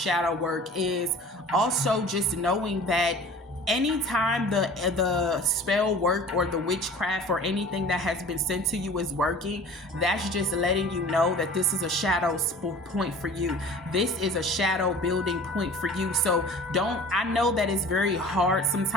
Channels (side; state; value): both; normal; correlation 0.44